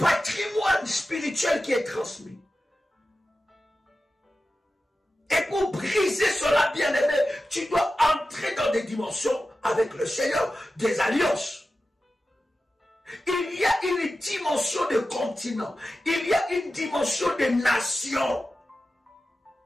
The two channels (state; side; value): normal; both; correlation 0.93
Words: spirituel qui est transmis. Et pour briser cela, bien-aimé, tu dois entrer dans des dimensions avec le Seigneur, des alliances. Il y a une dimension de continent. Il y a une dimension de nation.